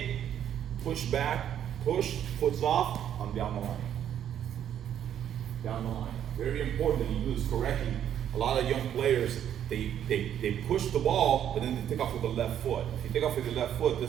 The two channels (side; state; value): left; quieter; 10.0 dB